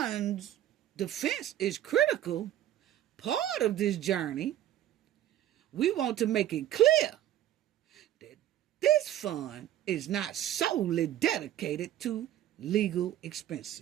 defense is critical part of this journey, we want to make it clear that this fund is not solely dedicated to legal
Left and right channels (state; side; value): quieter; left; 12.3 dB